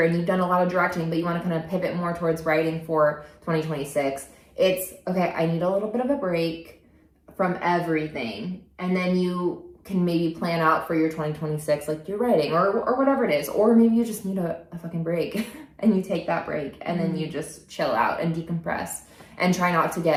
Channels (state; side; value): identical; both; correlation 1.00